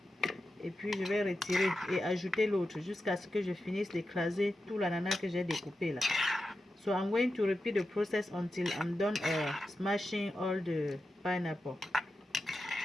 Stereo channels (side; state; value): both; normal; correlation 0.90